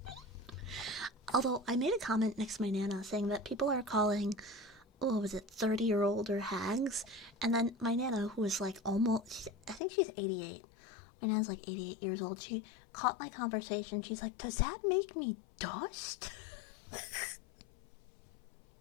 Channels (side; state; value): right; drops out; at 9.8 s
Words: Although, I made a comment next to my Nana saying that people are calling, 30-year-older hags? And then my Nana, who is like almost, I think she's 88. My Nana's like 88 years old. She caught my conversation. She's like, does that make me dust? I